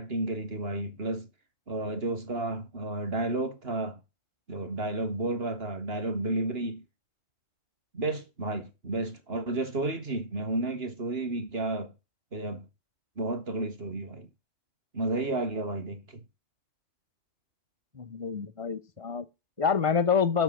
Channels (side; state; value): left; late; 2.9 ms